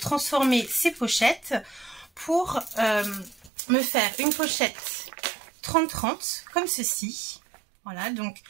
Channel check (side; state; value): left; drops out; at 3.5 s